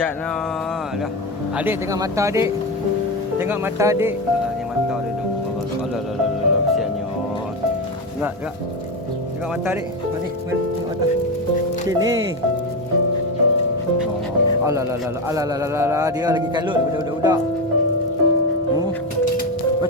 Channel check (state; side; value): normal; both; correlation 0.15